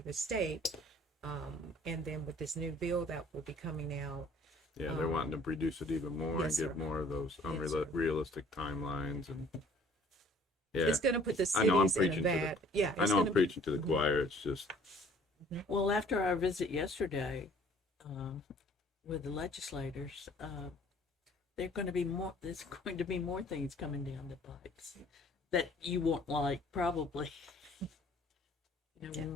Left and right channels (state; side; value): normal; both; correlation 0.55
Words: the state. And then with this new bill that will be coming out, Yeah, they're wanting to reduce it even more yes, and give sir. more of those Yes, sir. unrealistic timelines. And yeah, it's going to put the I know I'm cities in a preaching to the- bad. Yeah, I it's know I'm gonna preaching to the choir. It's just, Well, after our visit yesterday with the legislators, there's going to be more things coming down the pipes that you won't like, probably.